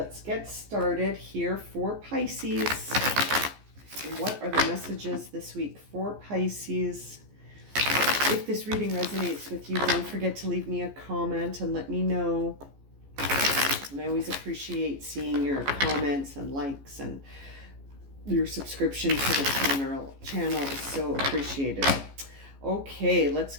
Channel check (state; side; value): late; left; 14 ms